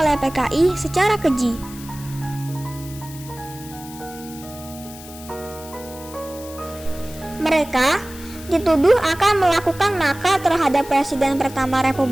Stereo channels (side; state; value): left; noise; hiss, 17 dB below the sound